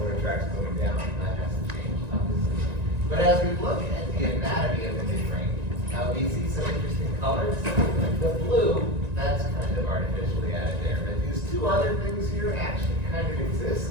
tracts going down. That hasn't changed, obviously. But as we look at the anatomy of the midbrain, we see some interesting colors. The blue, that's kind of artificially added there. But these two other things here actually kind of exist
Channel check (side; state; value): left; late; 1.9 ms